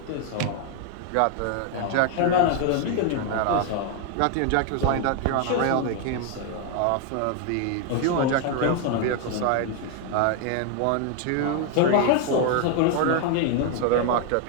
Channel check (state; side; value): different; both; correlation 0.00